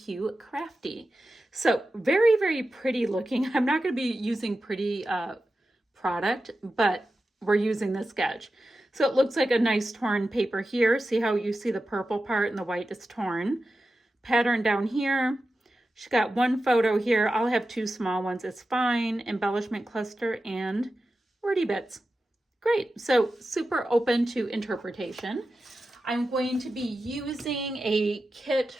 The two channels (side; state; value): both; normal; correlation 0.92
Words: Crafty. So very, very pretty looking. I'm not going to be using pretty product, but we're using the sketch. So it looks like a nice torn paper here. See how you see the purple part and the white is torn. Pattern down here. She got one photo here. I'll have two small ones. It's fine. Embellishment cluster and wordy bits. Great. So super open to interpretation. I'm going to be using a